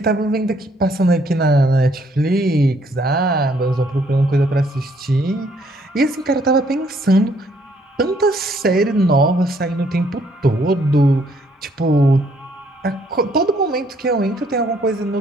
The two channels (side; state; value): both; normal; correlation 0.67